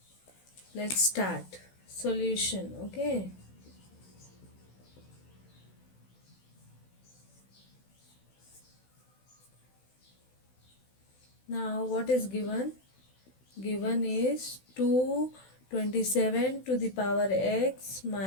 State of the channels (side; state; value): right; late; 16 ms